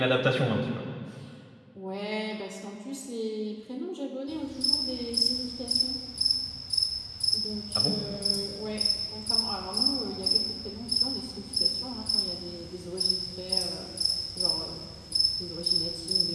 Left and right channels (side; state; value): both; identical; correlation 1.00